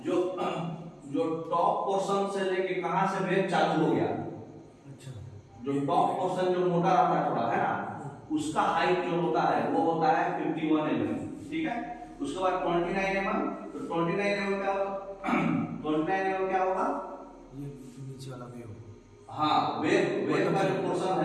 जो टॉप पोर्शन से लेके कहां से वेव चालू हो गया, अच्छा, जो टॉप पोर्शन जो मोटा रहता है थोड़ा, है ना, उसका हाइट जो होता है वो होता है 51 mm। ठीक है, उसके बाद 29 mm, तो 29 mm क्या होगा 29 mm क्या होगा, ये नीचे वाला वेव। हाँ, वेव का जो पोर्शन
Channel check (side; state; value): both; identical; correlation 1.00